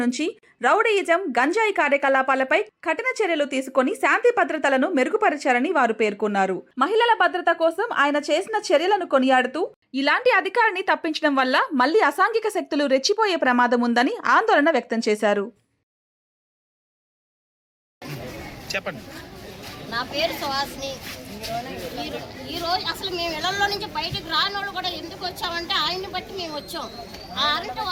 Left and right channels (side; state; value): both; identical; correlation 1.00